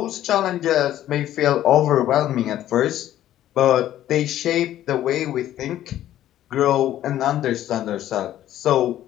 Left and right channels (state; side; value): quieter; right; 12.6 dB